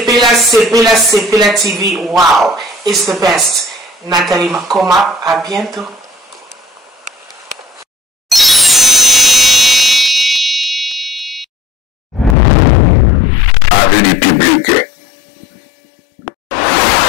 TV. Wow. It's the best. Nathalie Makoma. À bientôt.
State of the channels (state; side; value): drops out; right; at 12.4 s